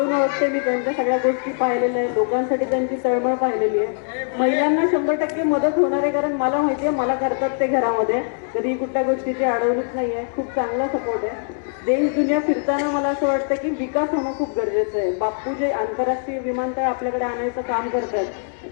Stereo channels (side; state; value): right; silent; 64 dB below the other